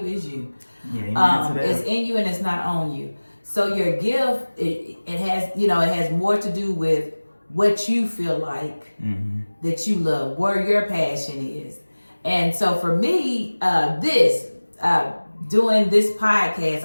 is you. It's in you and it's not on you. So your gift, it has more to do with what you feel like that you love, where your passion is. And so for me, doing this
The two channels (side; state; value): both; inverted; correlation -1.00